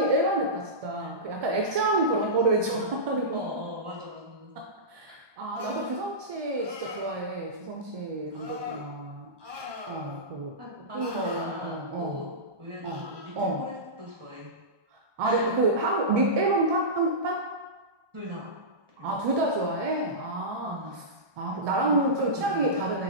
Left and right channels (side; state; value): left; late; 1.2 ms